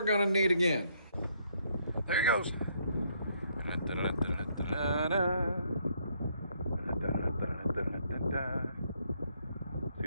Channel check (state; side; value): inverted; both; correlation -0.70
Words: gonna need again. There he goes. See